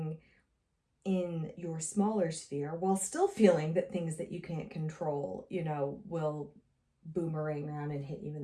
in your smaller sphere while still feeling that things that you can't control, you know, will boomerang around and hit you in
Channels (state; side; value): identical; both; correlation 1.00